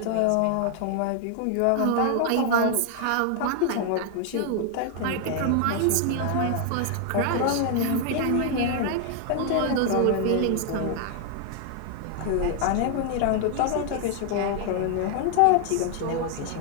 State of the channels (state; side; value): different; both; correlation 0.00